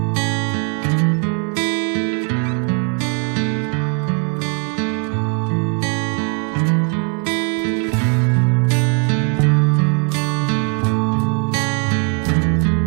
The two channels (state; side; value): quieter; left; 36.4 dB